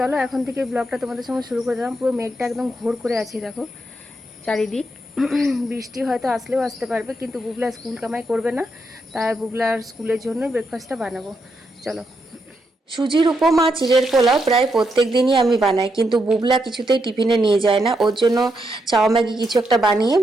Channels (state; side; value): normal; both; correlation 0.81